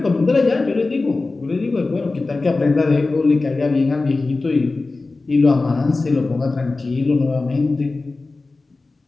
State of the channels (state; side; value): quieter; right; 3.5 dB